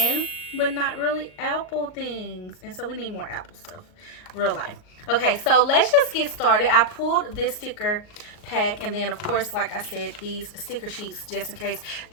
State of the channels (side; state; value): right; late; 38 ms